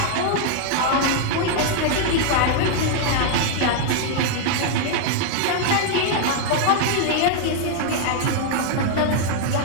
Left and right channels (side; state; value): both; different; correlation 0.00